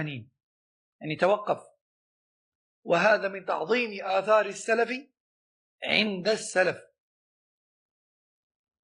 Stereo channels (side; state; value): both; identical; correlation 1.00